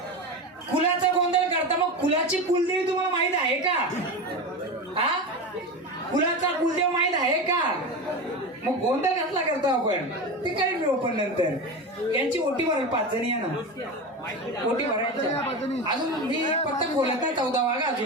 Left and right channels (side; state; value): both; normal; correlation 0.23